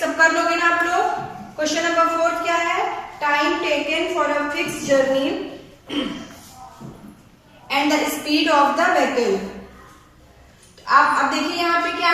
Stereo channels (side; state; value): both; identical; correlation 1.00